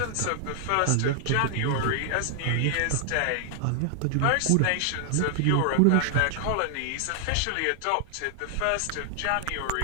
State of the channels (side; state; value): both; different; correlation 0.00